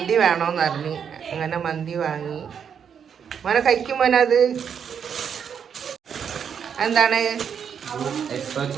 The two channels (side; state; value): left; quieter; 7.5 dB